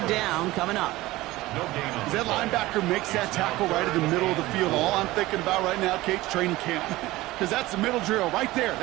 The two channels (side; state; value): left; quieter; 18.3 dB